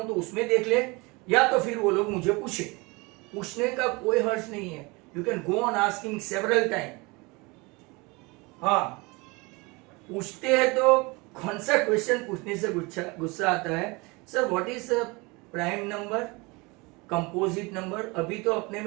तो उसमें देख ले, या तो फिर वो लोग मुझे पूछे। पूछने का कोई हर्ज नहीं है, you can go on asking several time. हाँ, पूछते हैं तो कौन सा क्वेश्चन पूछने से गुस्सा आता है? Sir what is prime number, composite number. अभी तो अपने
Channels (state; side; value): quieter; left; 26.0 dB